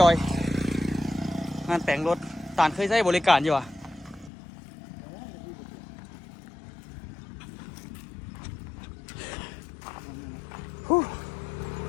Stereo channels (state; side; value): drops out; right; at 4.3 s